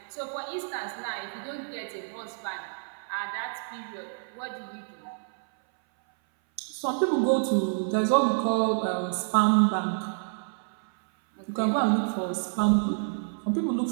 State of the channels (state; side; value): silent; left; 58 dB below the other